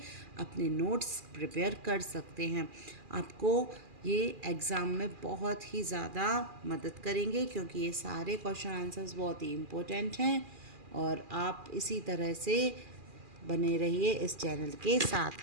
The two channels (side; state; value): left; late; 2.4 ms